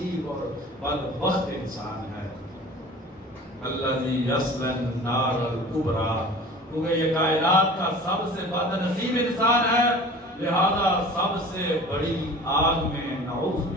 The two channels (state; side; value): normal; both; correlation 0.42